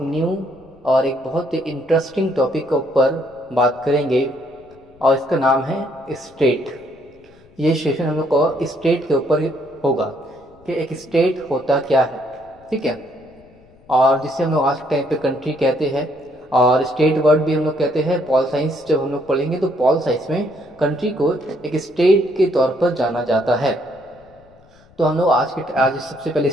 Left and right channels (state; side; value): noise; left; rumble, 28 dB below the sound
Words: न्यू और एक बहुत ही इंटरेस्टिंग टॉपिक के ऊपर बात करेंगे और इसका नाम है स्टेट। ये सेशन हम लोग को स्टेट के ऊपर होगा कि एक स्टेट होता क्या है, ठीक है। और जिसे हम लोग आज के टाइम पे कंट्री कहते हैं और स्टेट वर्ड भी हम लोग कहते हैं। पॉल साइंस जब हम लोग पढ़ेंगे तो पॉल साइंस में कंट्री को एक स्टेट के तौर पर जाना जाता है। तो हम लोग आज सबसे पहले